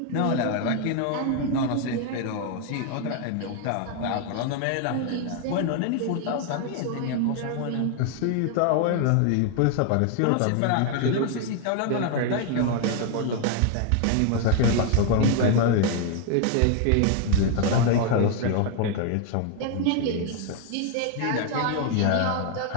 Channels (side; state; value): both; different; correlation 0.00